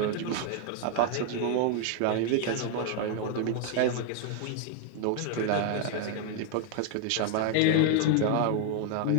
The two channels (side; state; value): both; different; correlation 0.00